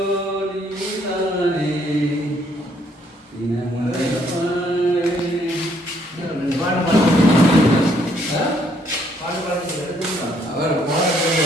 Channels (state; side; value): normal; both; correlation 0.68